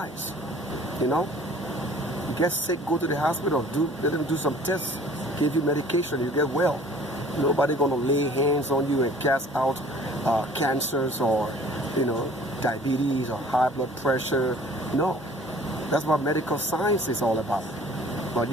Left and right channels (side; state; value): both; normal; correlation 0.50